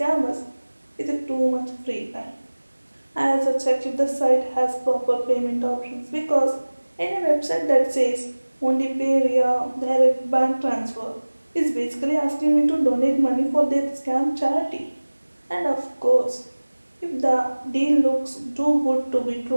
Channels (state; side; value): inverted; both; correlation -1.00